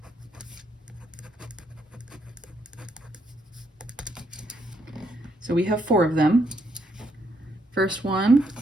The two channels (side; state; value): both; normal; correlation 0.74